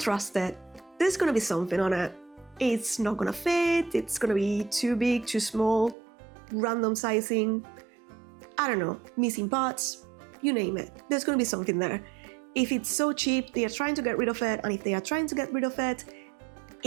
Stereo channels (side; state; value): left; drops out; at 6.0 s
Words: it. There's gonna be something on it. It's not gonna fit, it's gonna be too big, too small, random sizing, I don't know, missing parts, you name it. There's gonna be something there. If it's so cheap, they are trying to get rid of it, and if they are trying to get rid of it,